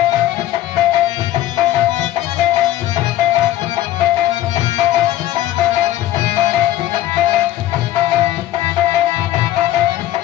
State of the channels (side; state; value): right; quieter; 14.0 dB